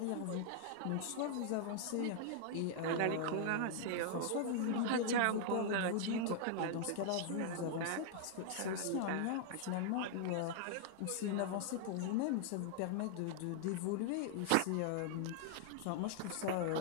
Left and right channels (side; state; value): both; different; correlation -0.01